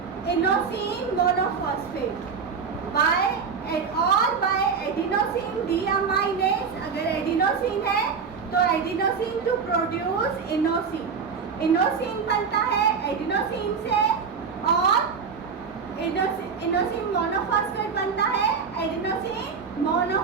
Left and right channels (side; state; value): left; quieter; 5.8 dB